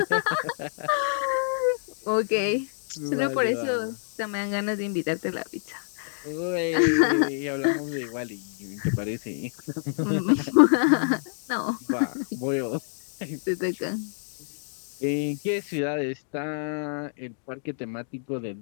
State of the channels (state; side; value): silent; right; digital silence